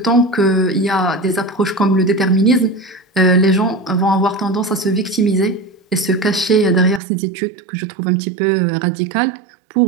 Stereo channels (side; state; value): left; drops out; at 7.0 s